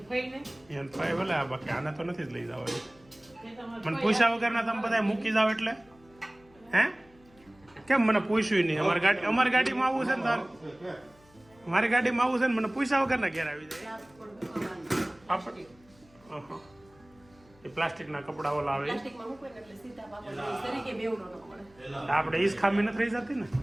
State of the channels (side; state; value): left; noise; hum, 29 dB below the sound